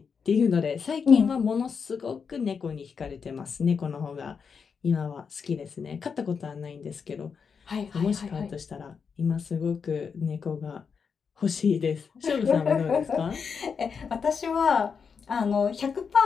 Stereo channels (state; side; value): quieter; right; 6.0 dB